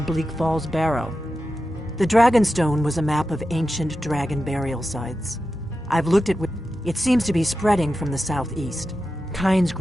Bleak Falls Barrow. The Dragonstone was a map of ancient dragon burial sites. I've looked at it. It seems to be spreading from the southeast. Kynes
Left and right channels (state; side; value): normal; both; correlation 0.91